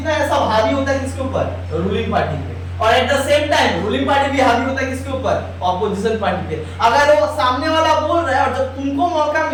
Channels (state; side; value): identical; both; correlation 1.00